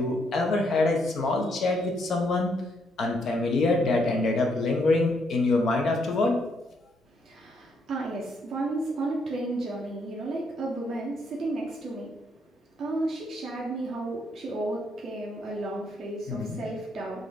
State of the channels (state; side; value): normal; both; correlation 0.74